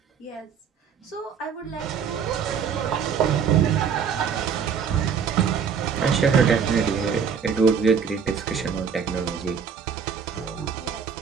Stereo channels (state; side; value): quieter; left; 6.7 dB